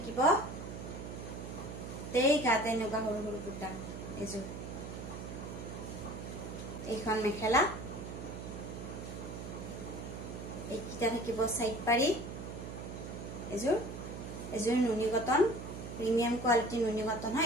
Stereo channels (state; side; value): noise; right; hum, 8 dB below the sound